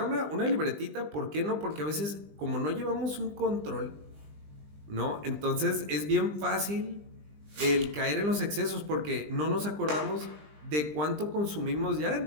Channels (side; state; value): left; late; 20 ms